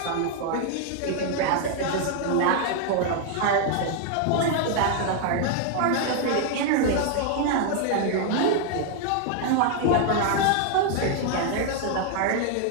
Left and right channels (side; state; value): both; different; correlation 0.00